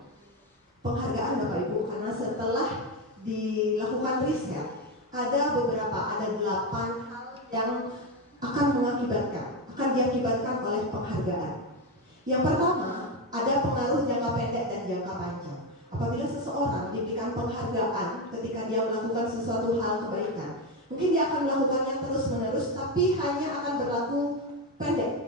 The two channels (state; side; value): normal; both; correlation 0.11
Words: Penghargaan Bapak Ibu, karena setelah dilakukan riset, ada 8 hal yang akan diakibatkan oleh penghargaan. Yang pertama, ada pengaruh jangka pendek dan jangka panjang. Apabila seseorang diberikan penghargaan ketika dia melakukan sesuatu hal kebaikan, mungkin dia akan melakukannya terus-menerus, tapi hanya akan berlaku pendek.